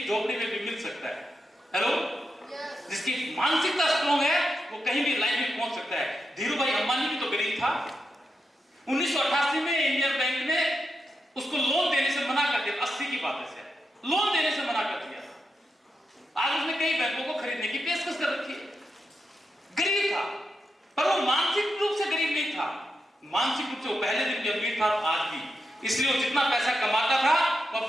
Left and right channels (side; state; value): both; normal; correlation 0.86